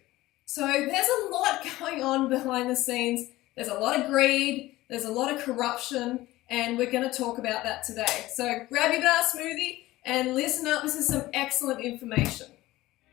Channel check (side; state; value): right; quieter; 17.5 dB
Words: So there's a lot going on behind the scenes. There's a lot of greed, there's a lot of corruption, and we're going to talk about that today. So grab your banana smoothie and listen up. This is some excellent information.